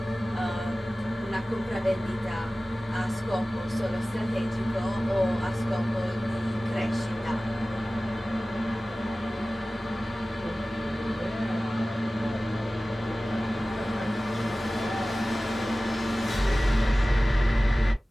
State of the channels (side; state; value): both; normal; correlation 0.97